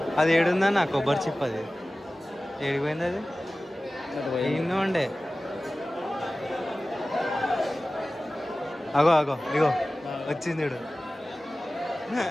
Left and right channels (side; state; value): both; normal; correlation 0.97